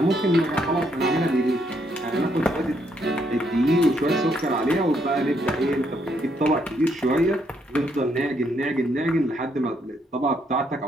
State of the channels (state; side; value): normal; both; correlation 0.74